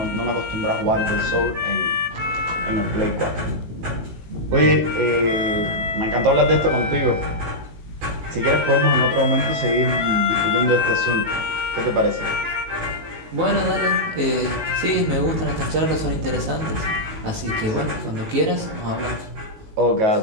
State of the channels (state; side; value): late; left; 18 ms